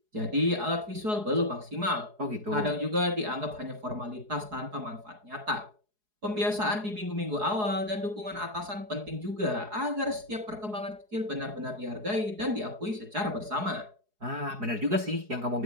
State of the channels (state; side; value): late; left; 4.8 ms